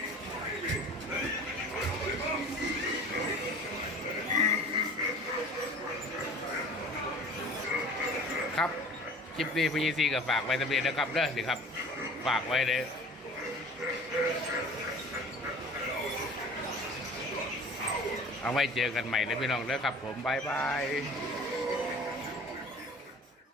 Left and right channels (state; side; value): normal; both; correlation 0.43